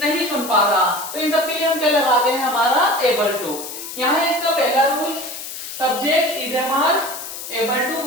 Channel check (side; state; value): left; noise; hiss, 9 dB below the sound